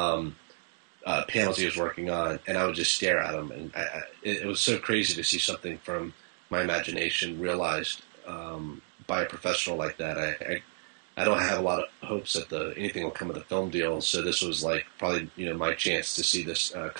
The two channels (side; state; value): left; silent; digital silence